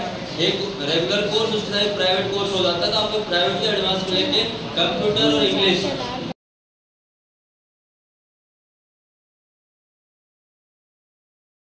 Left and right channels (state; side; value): identical; both; correlation 1.00